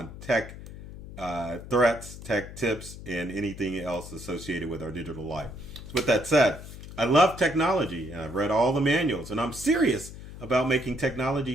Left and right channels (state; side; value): noise; left; hum, 13 dB below the sound